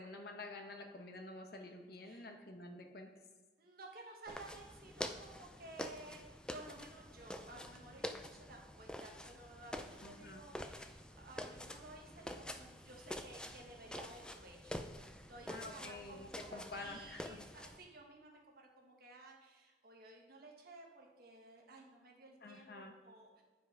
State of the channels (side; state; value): both; normal; correlation 0.48